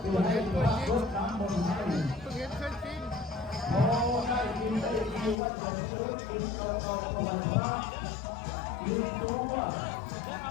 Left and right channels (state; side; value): drops out; right; at 5.4 s